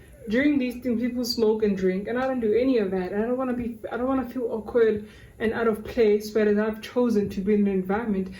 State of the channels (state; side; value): identical; both; correlation 1.00